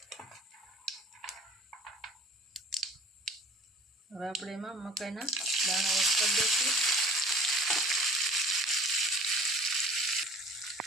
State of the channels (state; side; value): normal; both; correlation 0.47